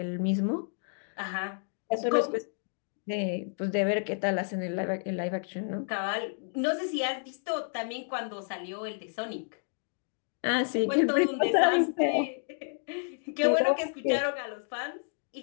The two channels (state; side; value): silent; right; 57 dB below the other